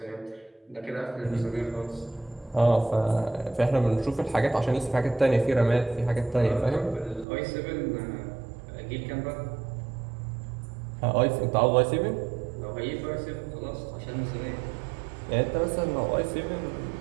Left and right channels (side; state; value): left; drops out; at 7.2 s